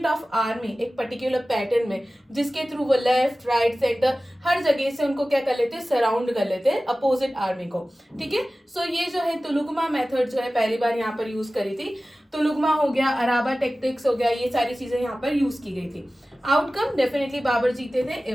of army एक पर्टिकुलर पैटर्न में, जिसके थ्रू वो लेफ्ट राइट सेंटर हर जगह से उनको क्या कर लेते हैं? सराउंड कर लेते हैं अपोजिट आर्मी को. ठीक है, सो ये जो है तुलुगमा मेथड जो है पहली बार यहाँ पर यूज करी थी. तुलुगमा हो गया, अराबा टेक्टिक्स हो गया, ये सारी चीजें यहाँ पर यूज की गई थी. आउटकम डेफिनेटली बाबर जीते थे.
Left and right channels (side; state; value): both; normal; correlation 0.96